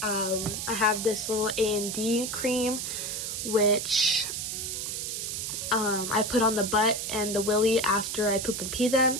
I have this little A&D cream, which I put on the butt and the willy after I poop and pee them.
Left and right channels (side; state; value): right; noise; hiss, 4 dB below the sound